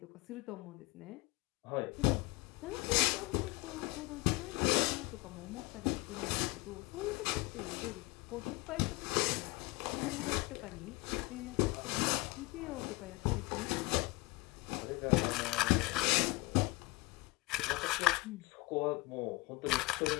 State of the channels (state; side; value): quieter; right; 24.2 dB